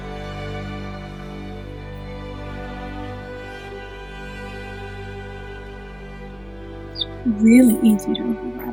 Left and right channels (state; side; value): noise; left; hum, 28 dB below the sound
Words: really easy to